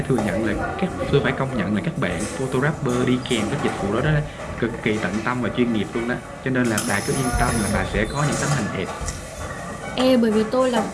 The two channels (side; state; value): both; identical; correlation 1.00